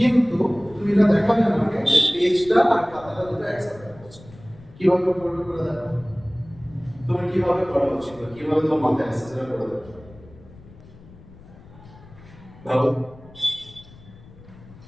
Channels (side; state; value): left; noise; rumble, 21 dB below the sound